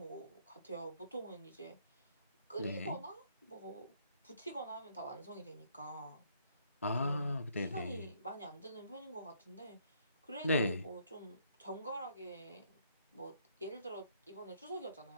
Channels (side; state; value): both; inverted; correlation -0.68